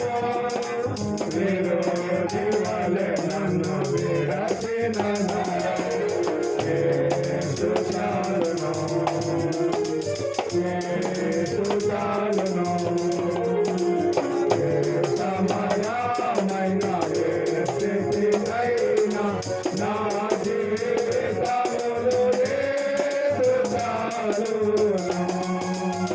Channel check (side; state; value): both; identical; correlation 1.00